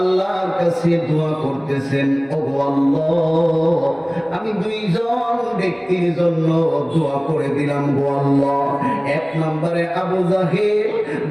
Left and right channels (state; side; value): identical; both; correlation 1.00